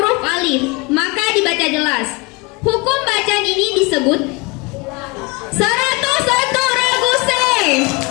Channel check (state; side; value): quieter; right; 27.0 dB